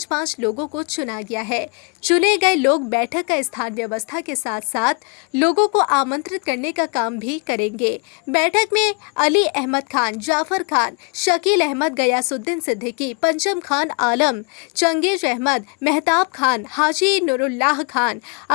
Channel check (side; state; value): right; quieter; 33.9 dB